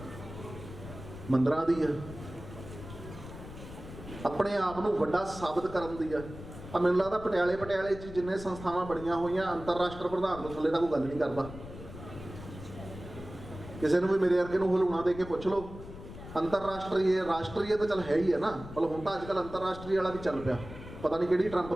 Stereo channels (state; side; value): noise; left; rumble, 13 dB below the sound